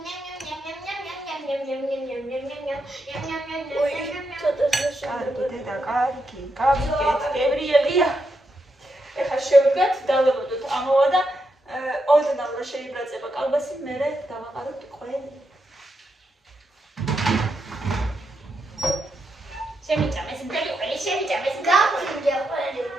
კარგი დედა, კარგი, გავიგეთ, გებრიელია. ეხლა შევდგათ, დავებოდოთ ამოვა და ოდნავ რა შეიბრაწება კალბასი, მერე დავაყაროთ ყველი. შემიჭამეს, მთელი ყველი შემიჭამეს. გავხინჯე ყველი.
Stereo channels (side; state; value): both; normal; correlation 0.83